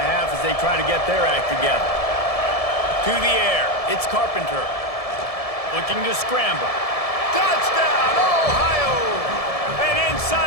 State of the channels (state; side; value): late; right; 1.7 ms